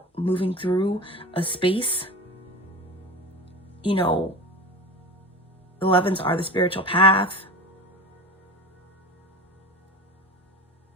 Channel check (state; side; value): normal; both; correlation 0.31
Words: moving through a space. You know, 11s are the spiritual path.